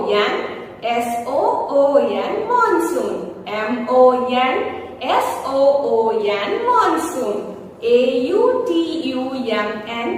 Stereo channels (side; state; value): both; identical; correlation 1.00